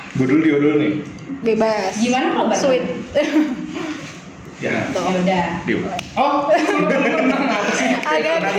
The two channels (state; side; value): identical; both; correlation 1.00